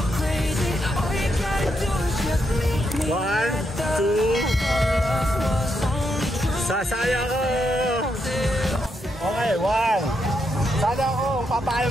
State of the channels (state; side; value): normal; both; correlation 0.81